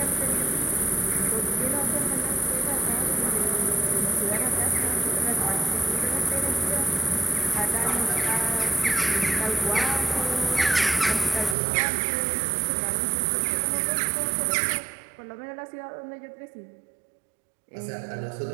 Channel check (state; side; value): drops out; left; at 11.6 s